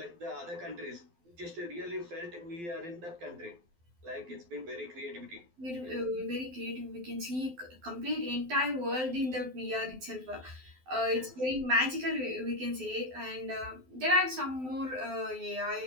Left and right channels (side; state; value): left; late; 12 ms